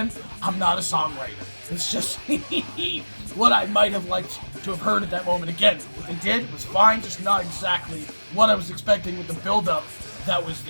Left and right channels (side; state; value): both; inverted; correlation -1.00